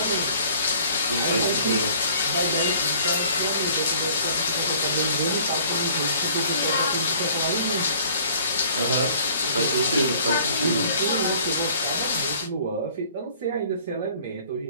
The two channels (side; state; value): both; inverted; correlation -0.54